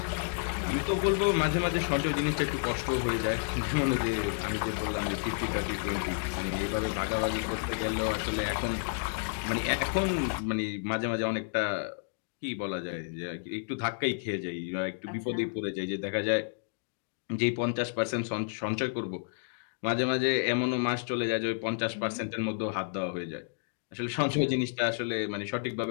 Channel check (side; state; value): right; silent; digital silence